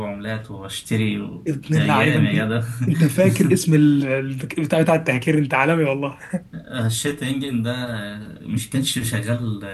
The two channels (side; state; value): both; identical; correlation 1.00